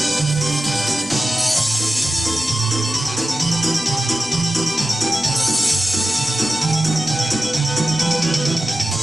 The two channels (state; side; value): normal; both; correlation 0.92